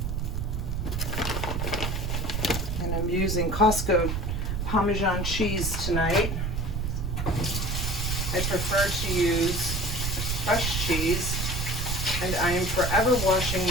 And I'm using Costco Parmesan cheese tonight. I prefer to use fresh cheese, and I am forever washing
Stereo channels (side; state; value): right; noise; rumble, 2 dB below the sound